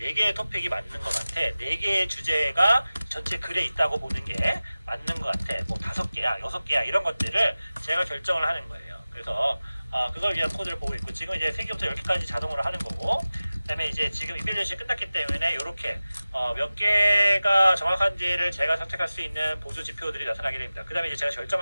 토픽이 맞는 것 같아. 4개의 주제가 전체 글에 있다고 보는 게 맞는 것 같아. 뭐 5개야, 6개야 이런 것들을 제가 결정을 하는 거예요. 그래서 그걸 위한 코드를 보고 있고 지금 이제 3개부터 10개까지 자동으로 하는 거고, 그 다음에 이제 지금 이밸류에이션이 끝났기 때문에 이렇게 몇 개가 정확한지를 제가 선택할 수 있는 보조 지표들이 나타나게 됩니다. 그 다음에 이제 제가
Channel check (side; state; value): both; inverted; correlation -0.97